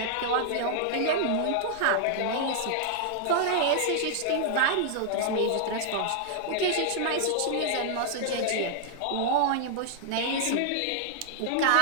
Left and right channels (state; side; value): different; both; correlation 0.00